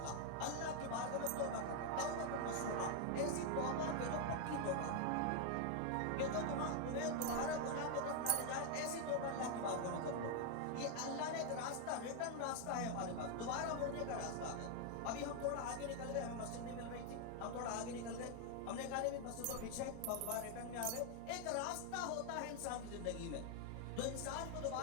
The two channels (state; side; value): different; both; correlation 0.00